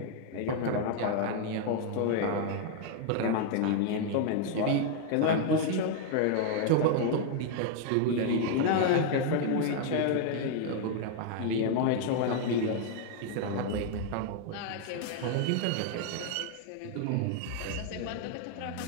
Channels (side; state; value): both; different; correlation 0.00